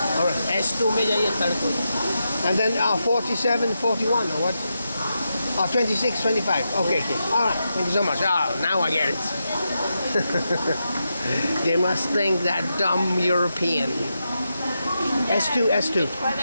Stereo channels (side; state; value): both; inverted; correlation -0.87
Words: All right. S2 में जाइए third coach. And then 47, 41 or what? 26, 25. Okay. All right. Thank you so much. Now I get it. They must think that dumb European. S2. Quite